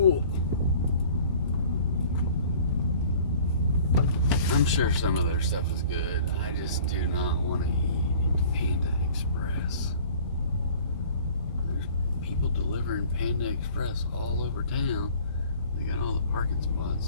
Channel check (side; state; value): both; inverted; correlation -0.49